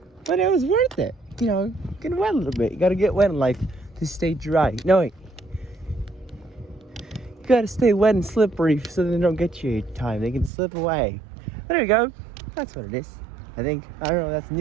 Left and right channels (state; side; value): drops out; left; at 10.5 s